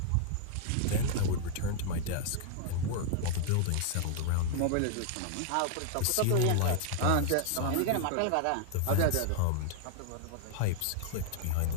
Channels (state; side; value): different; both; correlation 0.00